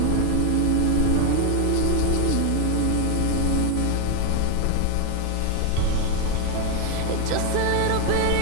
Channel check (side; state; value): both; different; correlation 0.01